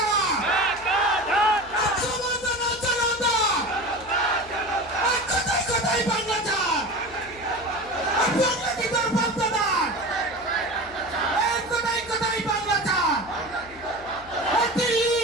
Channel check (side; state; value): left; noise; hum, 21 dB below the sound